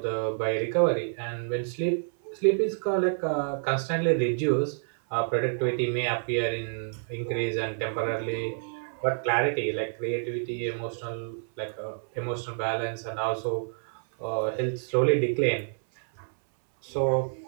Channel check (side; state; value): left; silent; 59 dB below the other